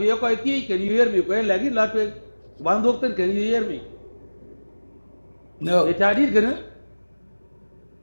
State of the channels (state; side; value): inverted; both; correlation -1.00